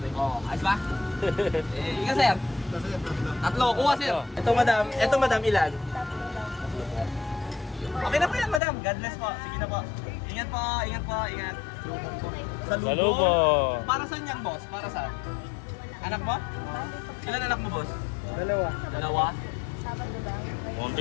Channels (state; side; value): drops out; right; at 8.6 s